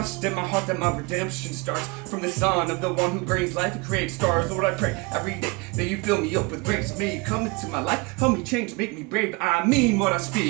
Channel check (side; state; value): left; quieter; 27.0 dB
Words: in my heart that my redemption starts from the Son of the one who brings life and creates stars. Lord, I pray every day that you fill me up with grace. May you come into my life, help me change, make me brave. I mean what I